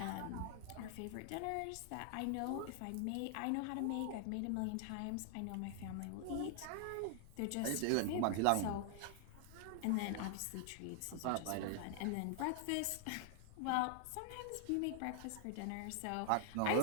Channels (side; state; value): both; different; correlation 0.00